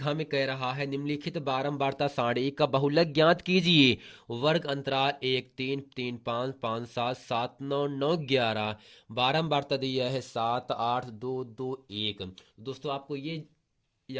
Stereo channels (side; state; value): both; identical; correlation 1.00